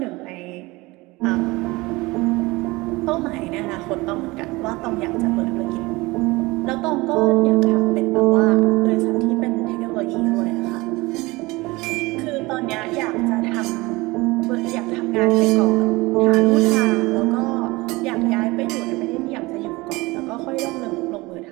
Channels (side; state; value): left; quieter; 22.3 dB